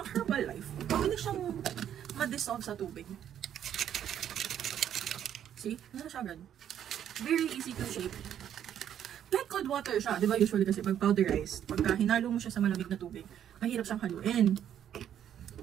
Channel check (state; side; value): quieter; left; 10.0 dB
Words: Herbalife, mabilis siyang ma-dissolve sa tubig. See? Ano siya agad? Very easy to shape. Kahit cold water siya, di ba usually kasi pag powderized, pagka hinalo mo siya sa malamig na tubig, mahirap siyang haluin.